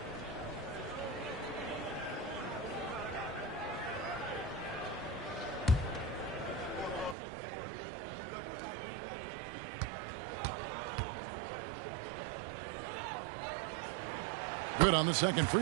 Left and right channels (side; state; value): left; drops out; at 7.2 s